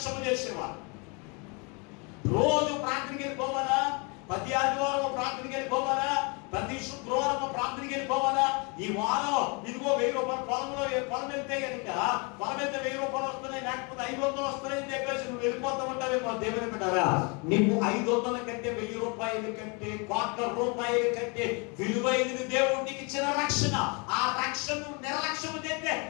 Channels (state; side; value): quieter; right; 31.8 dB